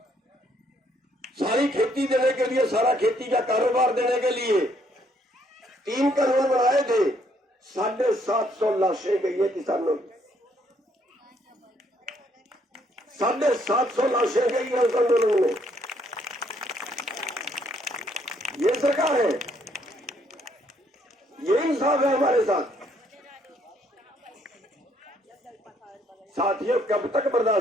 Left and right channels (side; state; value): both; normal; correlation 0.68